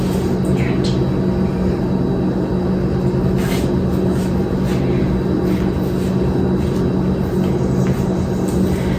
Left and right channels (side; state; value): both; identical; correlation 1.00